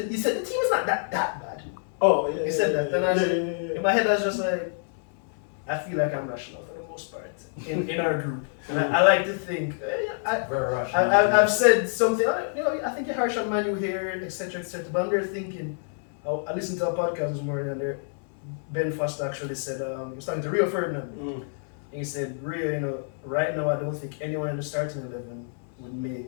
team is not that bad. Oh, yeah. He said that, and I said, yeah. in my head, I was just like, I feel like I'm rational for the most part in our group. And I like to think, Very rational. I've said something, I think you're harsh on Man U here, etc., but I'm there thinking, I listened to a podcast this morning, and there, Ben Foster actually said, he was talking to Rio Ferdinand, and he said, Rio, right now I don't think anyone in the starting 11 would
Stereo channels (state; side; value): silent; right; 60 dB below the other